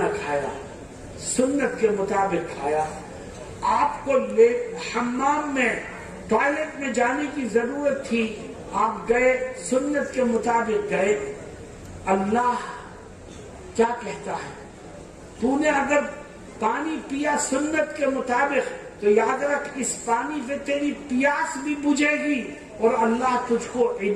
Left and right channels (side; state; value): both; identical; correlation 1.00